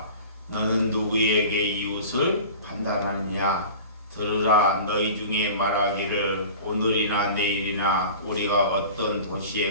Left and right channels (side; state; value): both; inverted; correlation -0.39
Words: 너는 누구에게 이웃을 판단하느냐? 들으라. 너희 중에 말하기를 오늘이나 내일이나 우리가 어떤